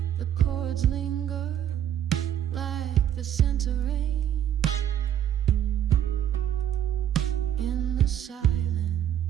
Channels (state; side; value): quieter; left; 10.4 dB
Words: the chords linger like the scent of rain. In the